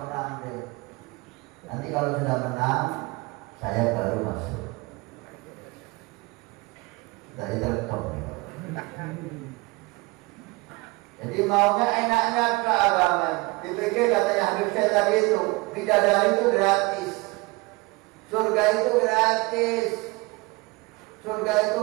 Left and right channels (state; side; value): quieter; left; 24.7 dB